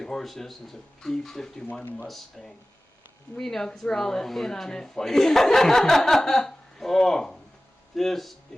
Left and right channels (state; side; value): normal; both; correlation 0.97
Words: Horse is, it's a P-51 Mustang. We know because we're all in on it. Oh, this